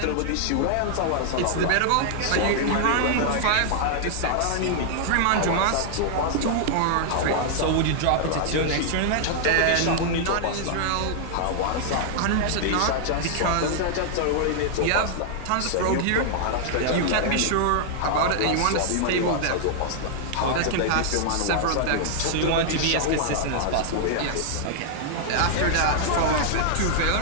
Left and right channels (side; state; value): both; different; correlation -0.01